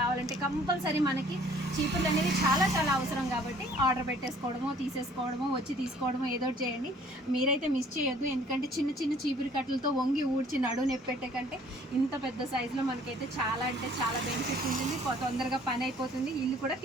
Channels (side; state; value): both; normal; correlation 0.56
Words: కంపల్సరీ మనకి చీపుర్లు అనేది చాలా అవసరం కాబట్టి ఆర్డర్ పెట్టేసుకోవడమో, తీసేసుకోవడమో, వచ్చి తీసుకోవడమో ఏదో చేయండి. మీరైతే మిస్ చేయొద్దు, ఎందుకంటే చిన్న చీపురు కట్టలతో వంగి ఊడ్చి నడువు నొప్పి పెట్టే కంటే ఇంత పెద్ద సైజులో మనకైతే చాలా అంటే చాలా బెనిఫిట్ ఉంటుంది. తొందరగా పని అయిపోతుంది, ఇల్లు కూడా